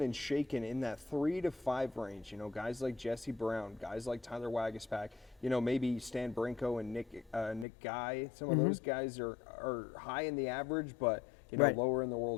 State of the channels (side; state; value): right; drops out; at 7.7 s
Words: and shaking in that 3 to 5 range. Guys like Jesse Brown, guys like Tyler Wagaspack. Maybe Stan Brinko and Nick Guy. Some of those guys are high in the average, but lower in the